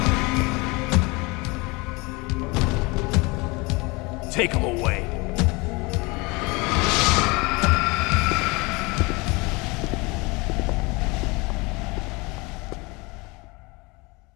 Take him away.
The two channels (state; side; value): quieter; right; 25.9 dB